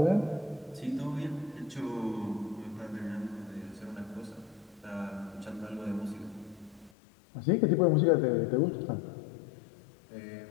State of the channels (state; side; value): drops out; right; at 6.9 s